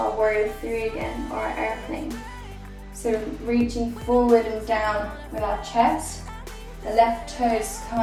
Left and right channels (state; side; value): identical; both; correlation 1.00